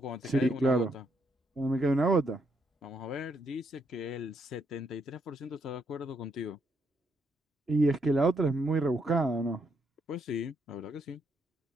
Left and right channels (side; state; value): both; normal; correlation 0.76